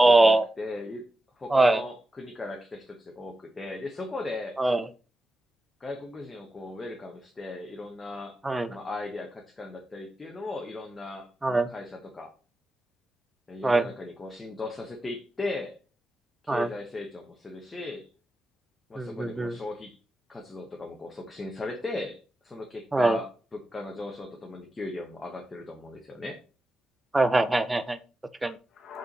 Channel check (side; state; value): both; normal; correlation 0.91